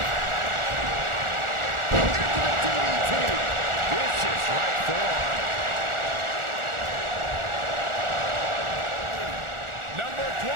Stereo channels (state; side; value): late; left; 1.4 ms